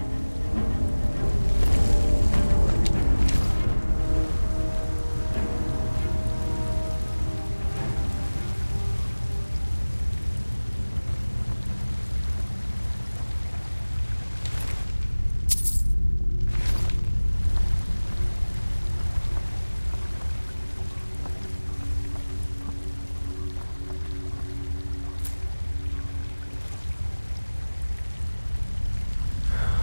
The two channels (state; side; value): inverted; both; correlation -1.00